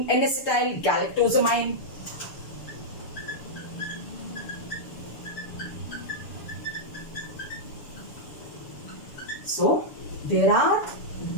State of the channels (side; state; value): right; late; 6.9 ms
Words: N-acetyl galactosamine. So there are